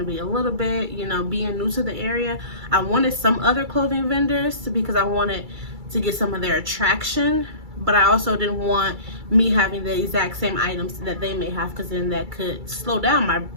be a little bit, you know, being new to the area? I wanted some other clothing vendors because I wanted to get some of their attraction, but I also didn't want me having the exact same items that they may have, because then that could slow down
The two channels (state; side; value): late; left; 2.3 ms